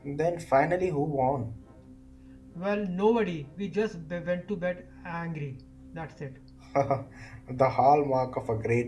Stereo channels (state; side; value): identical; both; correlation 1.00